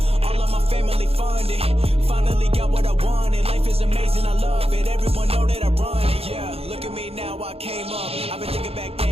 All of my family funded. Finally got what I wanted. Life is amazing, I love it. Everyone know that I run it. Yeah, look at me now, I came up. I've been thinking back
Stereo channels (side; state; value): left; late; 0.29 ms